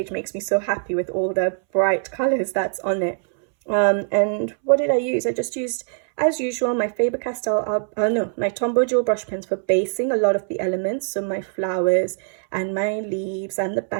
makes me so happy with all the bright colors that's on it. And what did I use? I just used, as usual, my Faber-Castell, my Tombow Jewel brush pens for basing a lot of the elements. So my flowers and my leaves and the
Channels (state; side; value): silent; left; 64 dB below the other